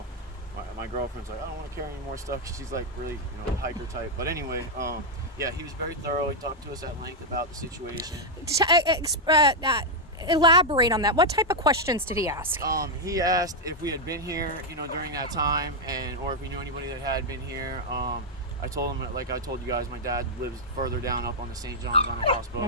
my girlfriend's like, I don't want to carry any more stuff, 'cause she's like really, hiker type. But anyway, yeah, he was very thorough. He talked to us at length about the situation. Elaborate on that. What type of questions did he ask? He asked if we had been here, during that time, or if we knew anybody that had been here. I told him, like I told you guys, my dad lives further down up on the St. John's on a houseboat.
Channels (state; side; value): normal; both; correlation -0.01